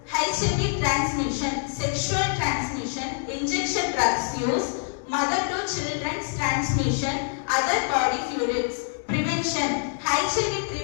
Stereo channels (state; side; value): silent; right; 61 dB below the other